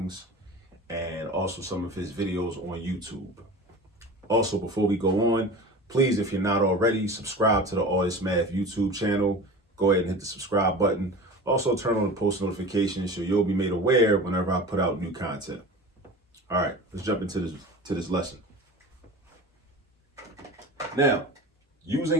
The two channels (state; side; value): normal; both; correlation 0.35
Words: and also some of his videos on YouTube. Also, before we go on, please, if you're not already, subscribe to the All This Math YouTube channel. Go ahead and hit the subscribe button. Also, turn on the post notifications so you'll be made aware whenever I put out new content. All right, let's jump into this lesson. Now,